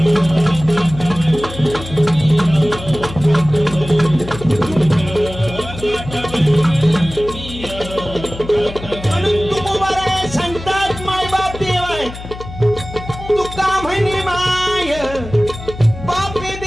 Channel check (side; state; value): left; noise; hum, 12 dB below the sound